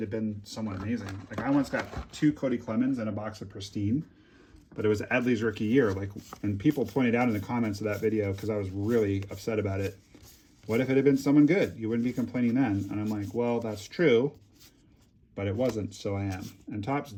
had been someone amazing? Like I once got two Cody Clemens and a box of Pristine, but it was Adley's rookie year. Like, and people pointed out in the comments of that video because I was really upset about it. What if it had been someone good? You wouldn't be complaining then. And I'm like, well, that's true, but it wasn't, so I am. And Topps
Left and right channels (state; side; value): identical; both; correlation 1.00